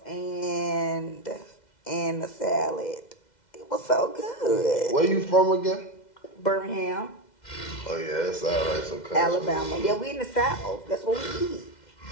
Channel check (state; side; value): late; right; 2.0 ms